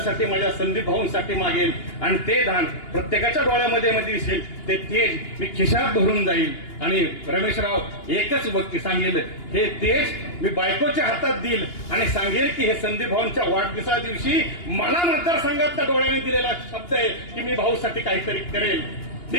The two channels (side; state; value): right; late; 2.8 ms